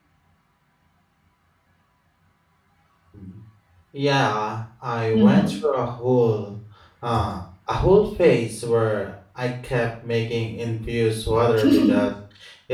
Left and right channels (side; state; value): both; identical; correlation 1.00